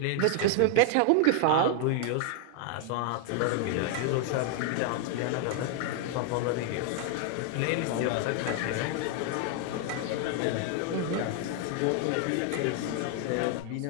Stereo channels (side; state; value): both; different; correlation 0.00